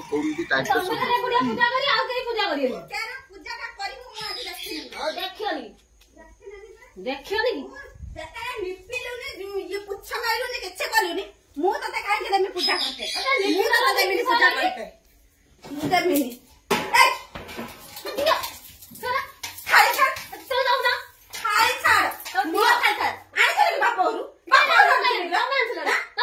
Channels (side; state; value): both; identical; correlation 1.00